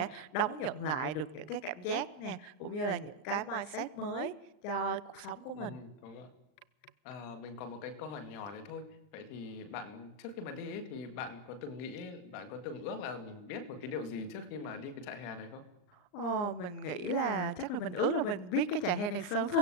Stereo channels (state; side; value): late; right; 39 ms